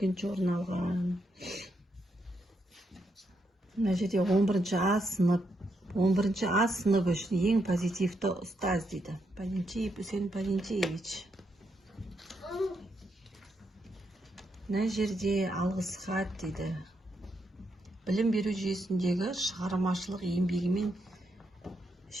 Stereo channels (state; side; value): normal; both; correlation 0.80